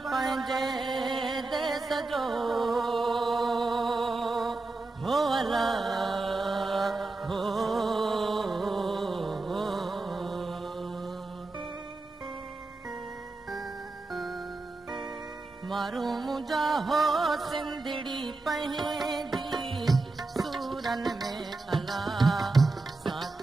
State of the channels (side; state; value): left; quieter; 3.4 dB